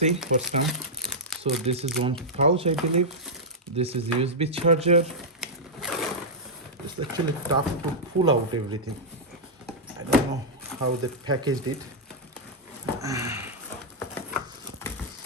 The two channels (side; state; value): both; normal; correlation -0.07